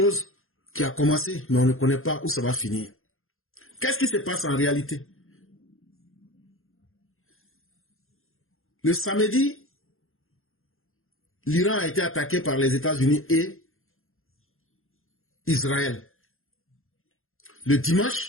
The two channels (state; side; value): late; right; 0.61 ms